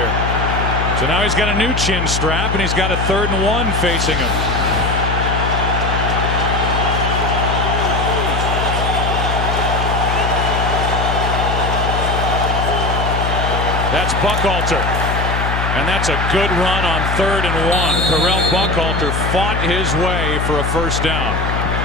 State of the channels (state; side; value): noise; left; hum, 1 dB below the sound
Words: So now he's got a new chin strap, and he's got a 3rd and 1 facing him. That's Buckhalter. And that's a good run on 3rd and 1. Correll Buckhalter fought his way for a 1st down.